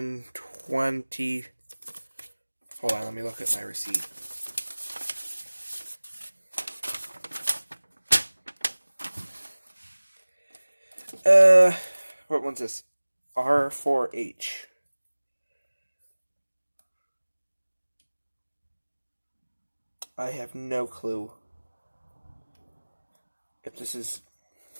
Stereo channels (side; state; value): both; inverted; correlation -1.00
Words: 20. Hold on, let me look at my receipt. What one's this? R4H. I have no clue if this is.